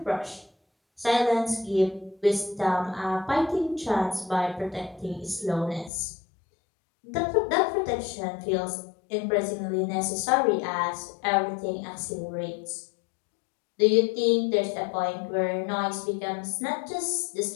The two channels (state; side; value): drops out; right; at 5.9 s